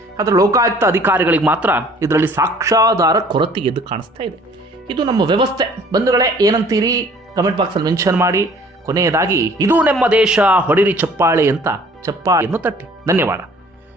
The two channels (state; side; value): normal; both; correlation 0.54